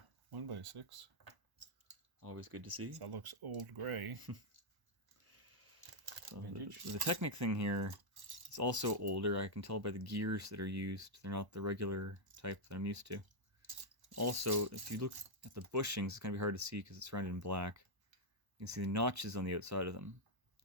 1x6. Always good to see. That looks old gray. So the Technic thing here is also older. I can tell by the gears that are used. They're not the regular type that I'm used to. Also, if you look at the bushings, it's going to be hard to see because it's surrounded in black. You can see the notches on the outside of them.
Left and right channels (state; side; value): late; left; 1.1 ms